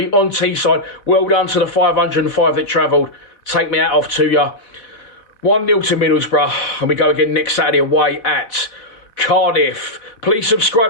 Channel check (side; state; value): right; late; 4.1 ms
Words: on Teesside. Well done to the 505 that travelled. Take me out off to you. 1-0 to Middlesbrough, and we go again next Saturday away at Cardiff. Please